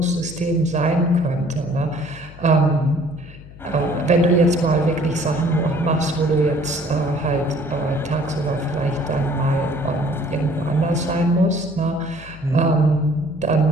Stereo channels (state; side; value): noise; left; hum, 18 dB below the sound